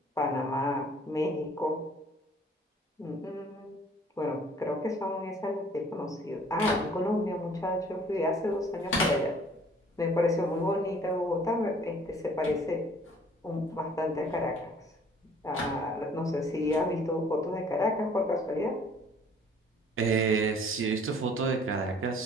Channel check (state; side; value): normal; both; correlation 0.55